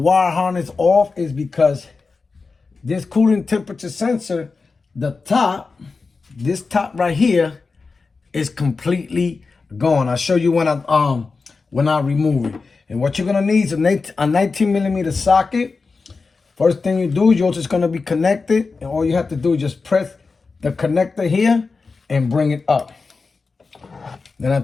harness off is because this cooling temperature sensor, this top right here is completely gone. I'll show you when I remove it. And what you're gonna need is a 19mm socket. First thing you do, you're just gonna be connected, and all you have to do is just press the connector here and bring it up. Then I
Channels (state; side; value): quieter; right; 4.3 dB